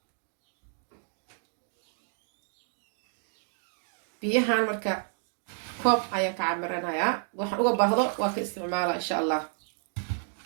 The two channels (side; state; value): left; silent; 57 dB below the other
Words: بيهان مركا كوب أيان كعمرنا يا وحن أقول بهذا وك استعماله إن شاء الله